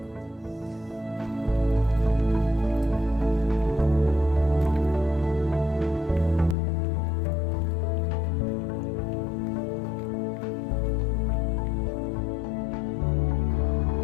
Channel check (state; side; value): drops out; right; at 6.6 s